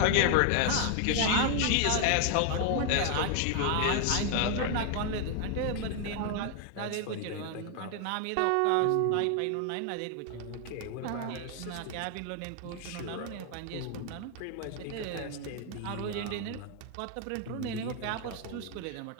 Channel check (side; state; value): both; different; correlation 0.00